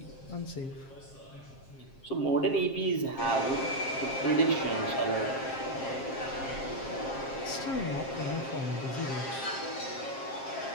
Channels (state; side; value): late; right; 7.5 ms